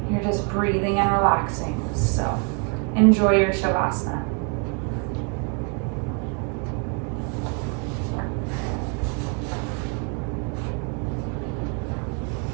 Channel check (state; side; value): quieter; left; 37.4 dB